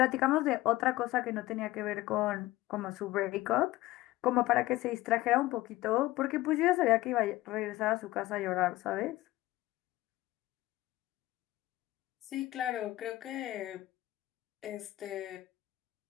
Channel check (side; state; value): right; quieter; 17.4 dB